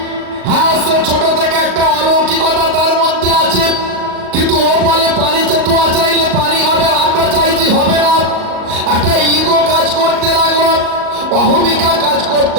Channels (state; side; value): late; left; 38 ms